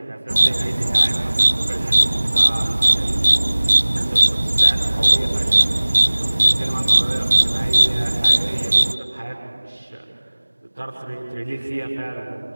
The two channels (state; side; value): inverted; both; correlation -1.00